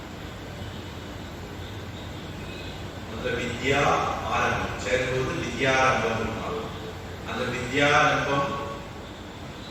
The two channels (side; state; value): both; identical; correlation 1.00